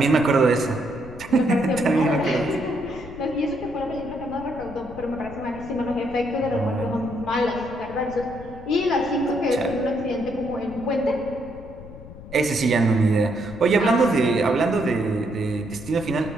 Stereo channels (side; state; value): left; noise; rumble, 15 dB below the sound